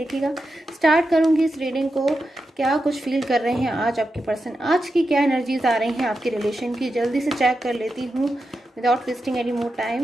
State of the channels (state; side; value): normal; both; correlation 0.89